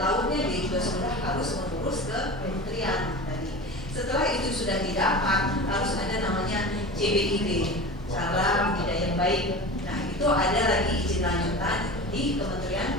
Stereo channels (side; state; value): both; normal; correlation 0.32